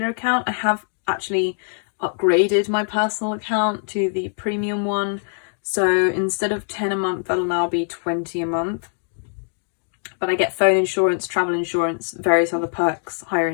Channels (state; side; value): silent; right; digital silence